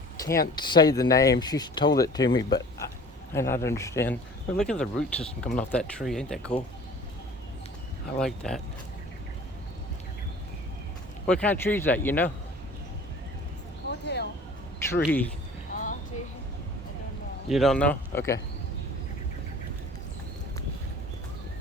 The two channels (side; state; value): both; normal; correlation 0.46